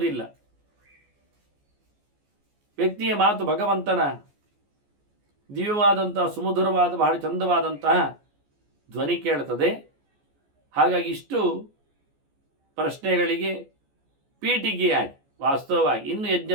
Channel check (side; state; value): left; late; 14 ms